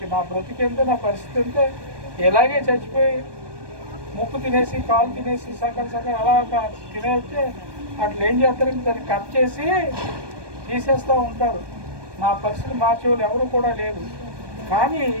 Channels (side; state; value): left; late; 1.2 ms